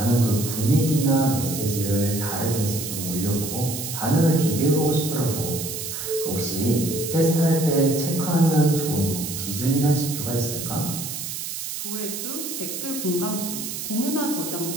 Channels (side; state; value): right; noise; hiss, 6 dB below the sound